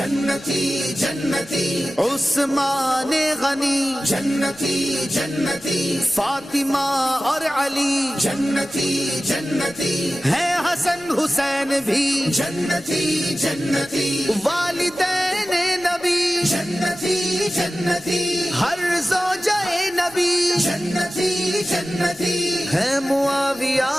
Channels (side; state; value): left; noise; rumble, 28 dB below the sound